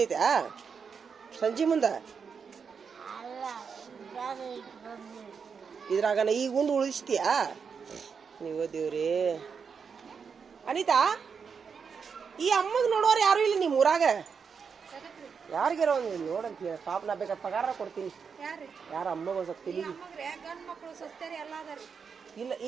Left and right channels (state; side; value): quieter; left; 6.1 dB